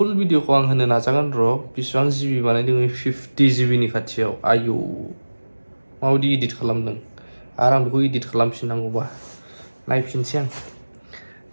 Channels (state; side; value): inverted; both; correlation -1.00